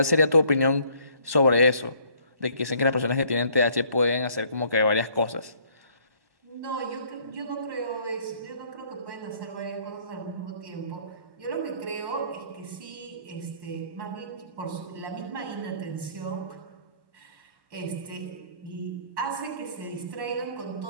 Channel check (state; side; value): late; left; 1.1 ms